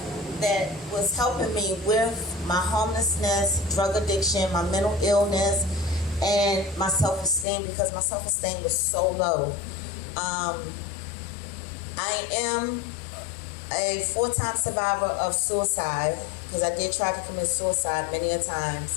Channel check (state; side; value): drops out; right; at 7.5 s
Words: that was helping me with my homelessness, drug addiction, my mental illness, and my self-esteem, because my self-esteem was so low. I am a 4-time survivor of suicide, because I did try to commit suicide many a